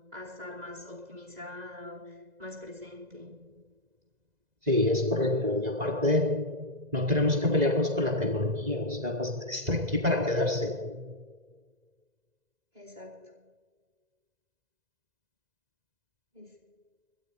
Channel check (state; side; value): late; left; 2.0 ms